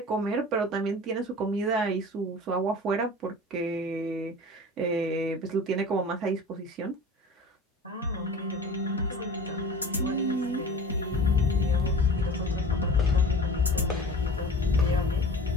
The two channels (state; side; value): normal; both; correlation 0.39